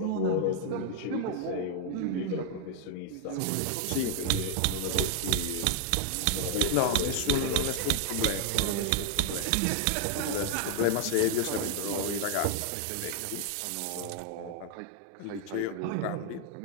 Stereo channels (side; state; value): both; different; correlation 0.00